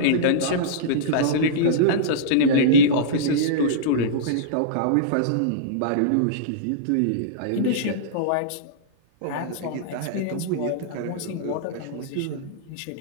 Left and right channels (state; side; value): different; both; correlation -0.03